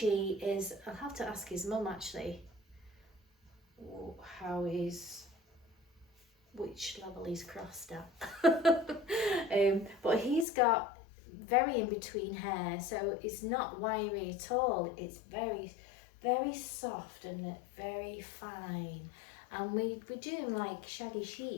is, I'll have to ask his mum actually which level he's crossed at. But he's got very in between hair, so it's not wiry at all. It's very, very soft and very fine. And we do him like shaggy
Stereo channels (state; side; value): drops out; right; at 10.5 s